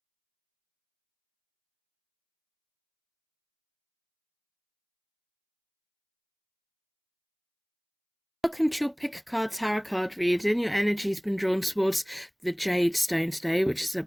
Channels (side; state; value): both; identical; correlation 1.00